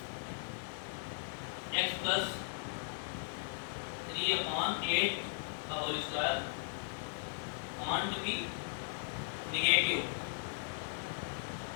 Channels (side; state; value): right; silent; 52 dB below the other